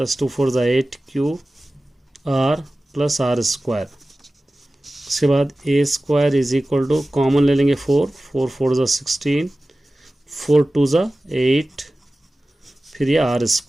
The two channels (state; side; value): normal; both; correlation 0.96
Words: 2 4 ज़ा 8 Q R plus R square. उसके बाद A square is equal to common ले लेंगे 4 4 4 ज़ा 16, 4 2 ज़ा 8, फिर ये r